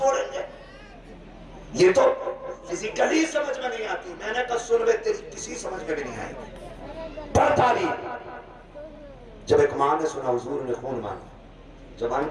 گے؟ یہ تو فزیکلی سمجھ میں نہیں آتی۔ میں نے کہا سن بے، تیری کسی سمجھ میں بھی نہیں آئی گی، پڑھتا نہیں۔ جب ایک ماں نے سنا حضور نے خون مانگا، زبان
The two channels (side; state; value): both; identical; correlation 1.00